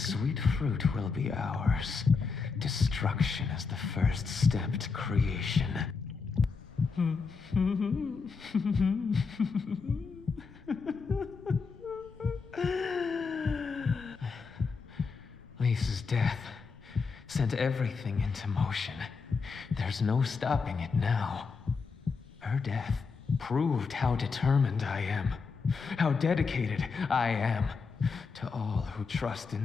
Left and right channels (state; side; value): quieter; right; 5.0 dB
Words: fruit will be ours. Destruction is the first step to creation. Lisa's death sent everything into motion. There's no stopping it now. Her death proved how determined I am, how dedicated I am to all who trust